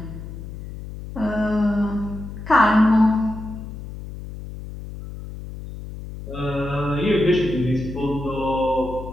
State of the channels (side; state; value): left; noise; hum, 11 dB below the sound